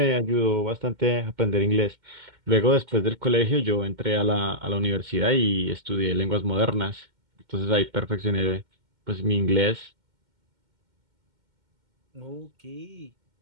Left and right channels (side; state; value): left; late; 2.1 ms